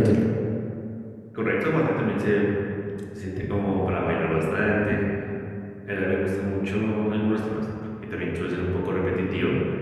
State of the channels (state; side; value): identical; both; correlation 1.00